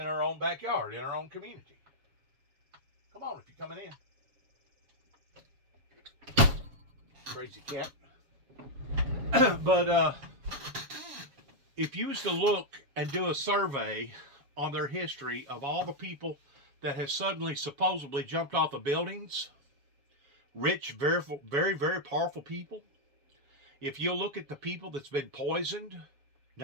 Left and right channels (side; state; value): left; late; 7.2 ms